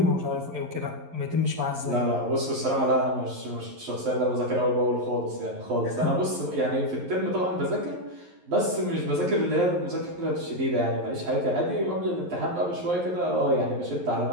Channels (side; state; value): left; late; 11 ms